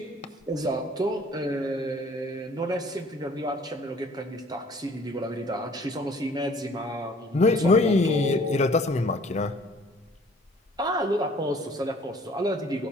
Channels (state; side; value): normal; both; correlation 0.54